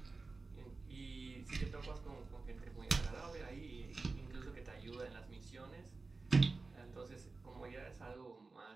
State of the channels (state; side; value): quieter; left; 3.8 dB